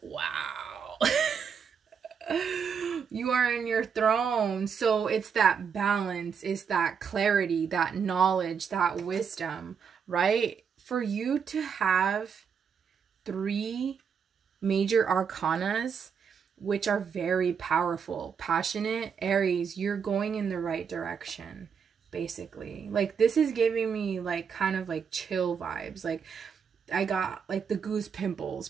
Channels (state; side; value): quieter; left; 6.7 dB